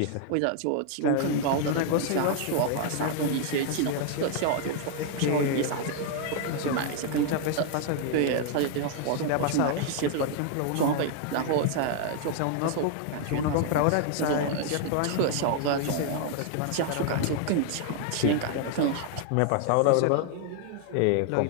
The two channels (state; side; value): different; both; correlation 0.00